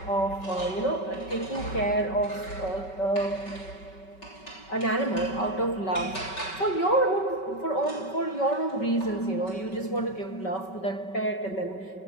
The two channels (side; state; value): right; late; 5.3 ms